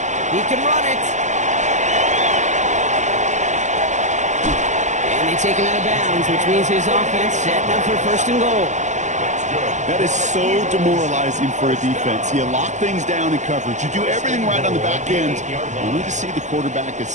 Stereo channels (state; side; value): late; left; 0.35 ms